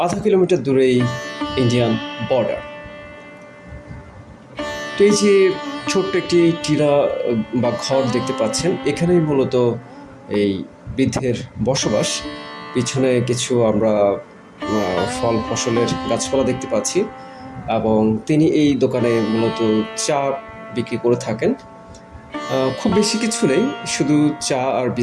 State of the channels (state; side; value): identical; both; correlation 1.00